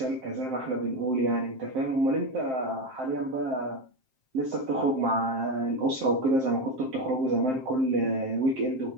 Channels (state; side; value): late; left; 7.6 ms